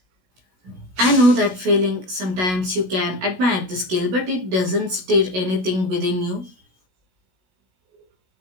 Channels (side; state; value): left; late; 16 ms